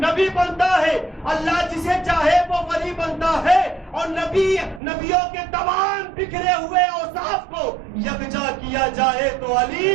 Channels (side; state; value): left; drops out; at 4.8 s